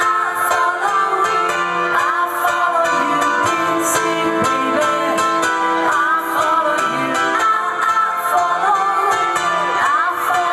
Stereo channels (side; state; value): both; identical; correlation 1.00